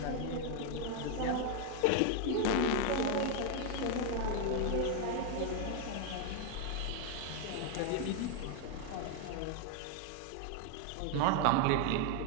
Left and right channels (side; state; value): both; different; correlation 0.01